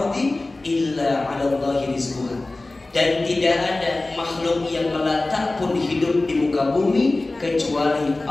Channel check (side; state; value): right; quieter; 3.0 dB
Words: illa 'ala Allahi rizquha. Dan tidak ada makhluk yang melata pun hidup di muka bumi kecuali